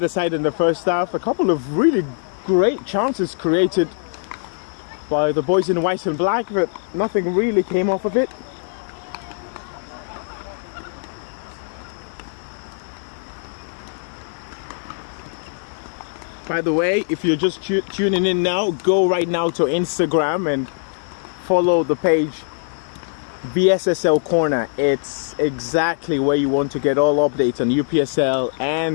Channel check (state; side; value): silent; right; digital silence